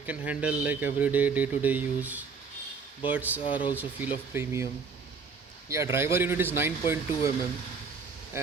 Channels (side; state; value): left; quieter; 5.2 dB